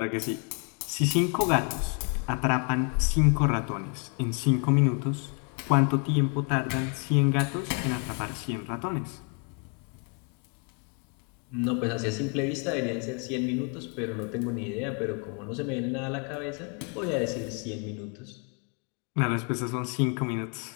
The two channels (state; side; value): quieter; right; 38.1 dB